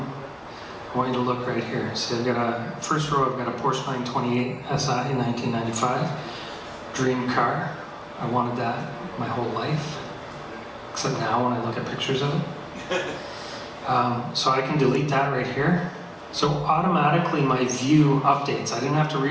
I want you to look right here. So I've got a, first row, I've got a Porsche 928 SI 1995, dream car. I wanted that my whole life, except now when I look at pictures of it. So I can delete that right here. So automatically my view updates. I didn't have to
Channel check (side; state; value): both; identical; correlation 1.00